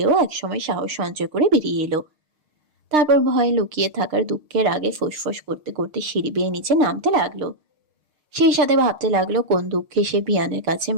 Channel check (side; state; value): left; late; 6.6 ms